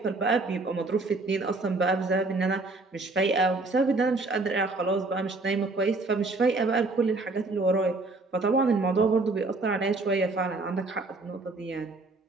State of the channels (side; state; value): left; quieter; 3.4 dB